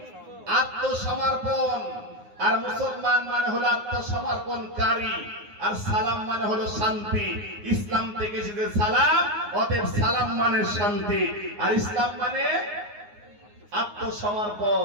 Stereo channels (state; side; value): late; left; 9.6 ms